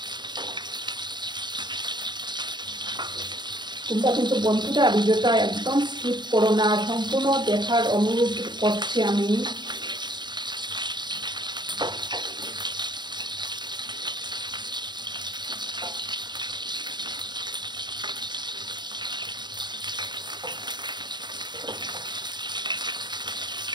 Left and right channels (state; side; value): late; left; 0.21 ms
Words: তোমরা কিন্তু বন্ধুরা ভিডিওটা একদম স্কিপ করো না, সম্পূর্ণ দেখার অনুরোধ করছি আমি।